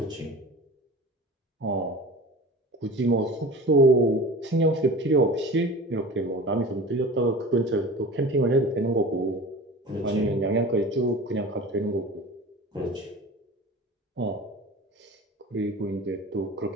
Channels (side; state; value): both; normal; correlation 0.37